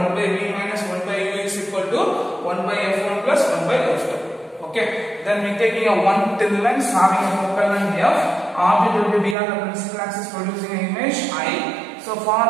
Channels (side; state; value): left; drops out; at 9.3 s